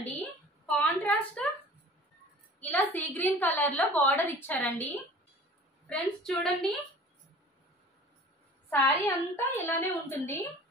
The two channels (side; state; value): both; normal; correlation 0.45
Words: కాంట్రాస్ట్ ఇలా సీ గ్రీన్ కలర్ లో బార్డర్ ఇచ్చారండి. ఫ్రెండ్స్ చూడండి, సారీ అంతా ఇలానే ఉంటుంది.